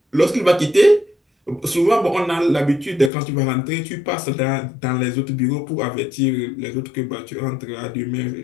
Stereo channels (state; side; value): drops out; right; at 3.1 s